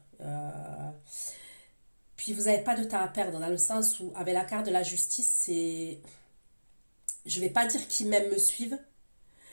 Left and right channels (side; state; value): both; inverted; correlation -1.00